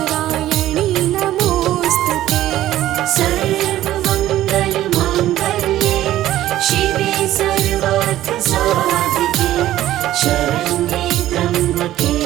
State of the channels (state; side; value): quieter; left; 13.8 dB